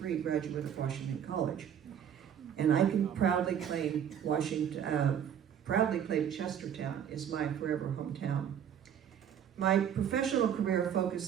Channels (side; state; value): left; quieter; 9.0 dB